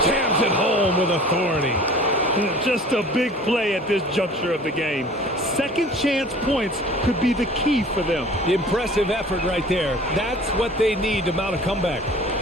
jams it home with authority. Just a big play at this juncture of the game. Second chance points could be the key for them. Impressive effort right there. That's what they need to mount a comeback.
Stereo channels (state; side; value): normal; both; correlation 0.46